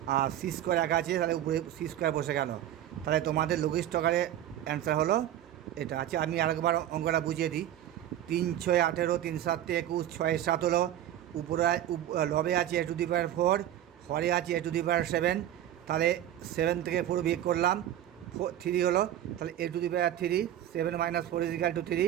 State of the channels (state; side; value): quieter; left; 11.8 dB